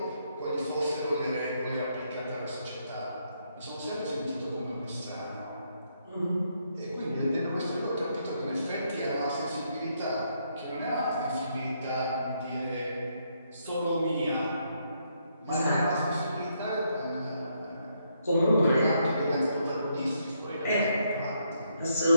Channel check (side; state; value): both; inverted; correlation -0.75